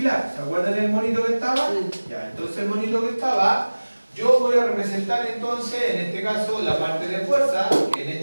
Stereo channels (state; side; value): inverted; both; correlation -1.00